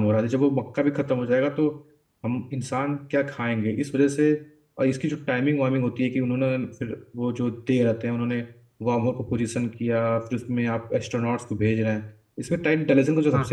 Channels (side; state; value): both; identical; correlation 1.00